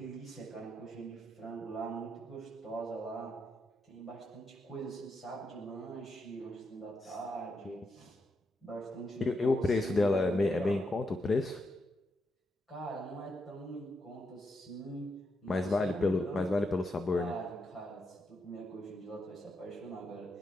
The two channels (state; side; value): normal; both; correlation 0.82